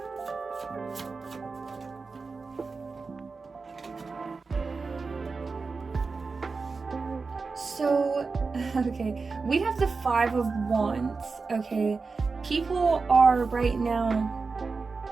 So, okay, we have the Five of Wands, okay? People are right now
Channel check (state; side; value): quieter; left; 4.4 dB